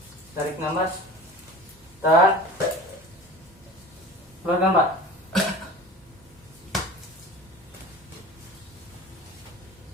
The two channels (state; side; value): normal; both; correlation 0.38